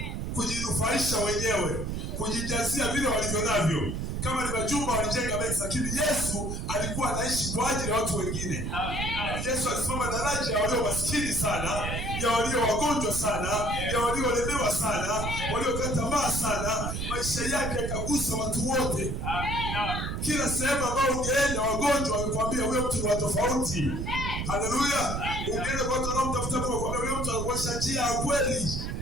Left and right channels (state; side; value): noise; right; rumble, 3 dB below the sound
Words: kujinufaisha wenyewe, kujijazia vile walivyo navyo. Kama ni majumba walijenga mengi, lakini Yesu alikuwa anaishi kwa ajili ya watu wengine. Yesu alisimama daraja ya walio maskini sana, ya walio wagonjwa sana, ya waliolemewa sana, waliokata tamaa sana. Maisha yake yakagusa watu wote. Kila sehemu ambayo ungeenda wagonjwa walikwambia wewe mtu wa tofauti. Haleluya. Ungeenda kwa watu wanaomtafuta Mungu wakwambia wewe mtu anakuonyesha njia ya kweli.